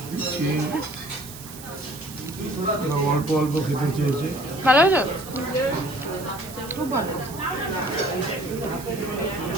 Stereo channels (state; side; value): noise; right; hiss, 14 dB below the sound